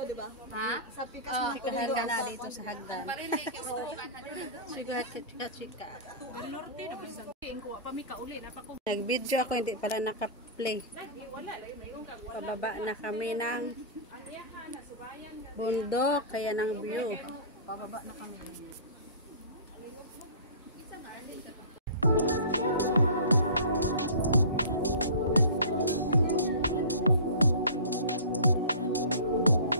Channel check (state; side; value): inverted; both; correlation -0.36